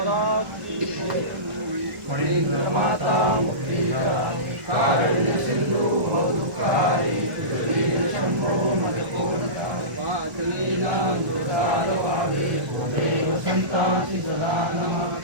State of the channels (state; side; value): late; left; 1.4 ms